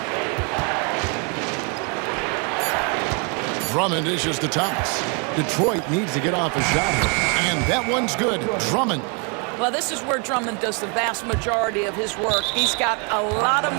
Drummond issues to Thomas. Detroit needs to get off a shot here. And that one's good. Drummond. Well, this is where Drummond does the vast majority of his work. He's got a lot of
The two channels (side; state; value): left; quieter; 35.5 dB